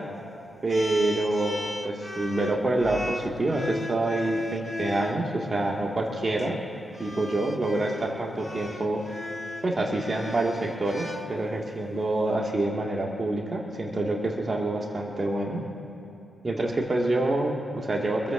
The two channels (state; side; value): normal; both; correlation 0.88